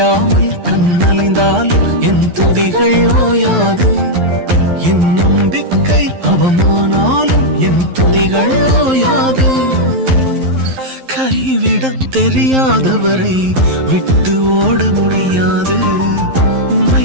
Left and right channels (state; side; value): late; left; 11 ms